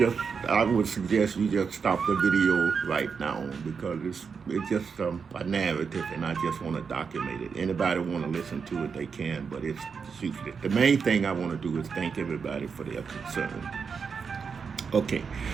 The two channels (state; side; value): quieter; left; 5.8 dB